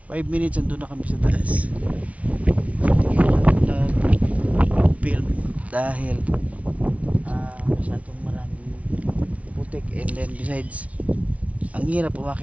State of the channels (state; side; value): late; left; 0.066 ms